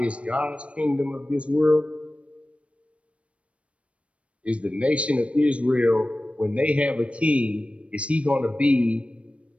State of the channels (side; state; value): left; late; 0.062 ms